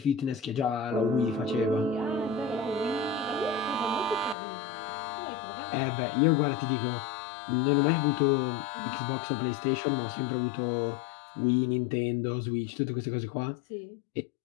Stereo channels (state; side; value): drops out; right; at 4.4 s